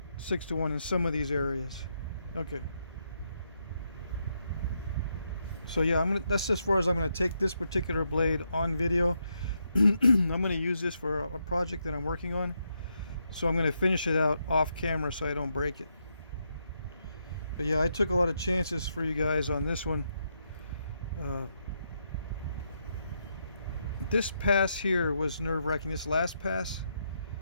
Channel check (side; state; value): both; inverted; correlation -0.80